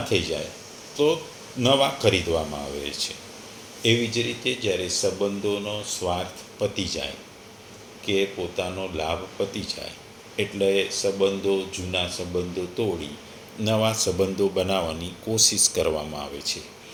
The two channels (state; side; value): identical; both; correlation 1.00